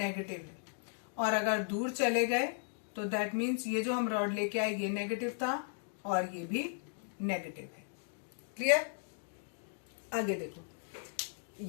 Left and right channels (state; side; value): silent; right; digital silence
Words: है, और अगर दूर चले गए तो दैट मीन्स ये जो हम रॉड लेके आए ये नेगेटिव था और ये भी नेगेटिव है। क्लियर? आगे देखो,